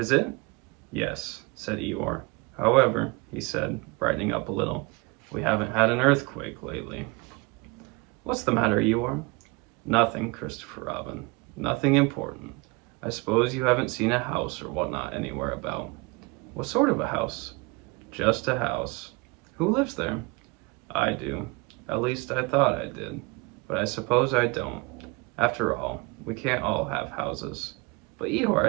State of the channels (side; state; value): left; quieter; 27.5 dB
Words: it? Yes, said Eeyore. However, he said, brightening up a little, we haven't had an earthquake lately. What's the matter, Eeyore? Nothing, Christopher Robin. Nothing important. I suppose you haven't seen a house or whatnot anywhere about. What sort of a house? Just a house. Who lives there? I do. At least I thought I did. But I suppose I don't. After all, we can't all have houses. But Eeyore,